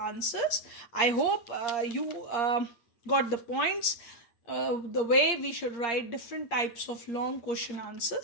I hope you got the points, the way we should write different types of long question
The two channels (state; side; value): late; right; 8.6 ms